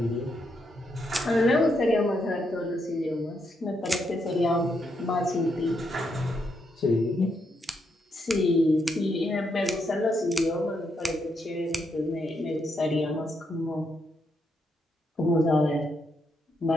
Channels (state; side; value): normal; both; correlation 0.79